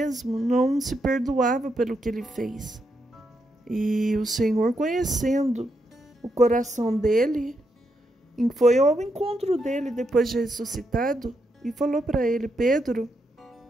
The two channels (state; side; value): normal; both; correlation 0.81